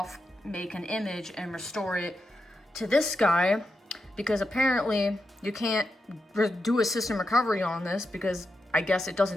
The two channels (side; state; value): both; normal; correlation 0.87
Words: make an image, and restore it to this guy. Because apparently you can't do a system recovery on this, because I guess it